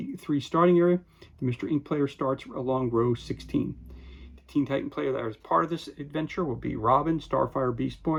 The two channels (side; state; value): both; identical; correlation 1.00